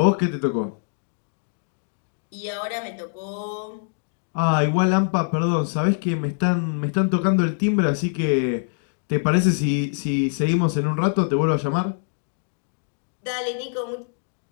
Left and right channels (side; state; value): right; silent; digital silence